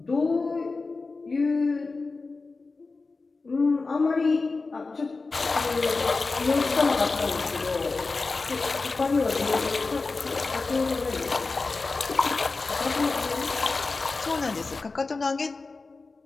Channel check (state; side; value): quieter; right; 3.9 dB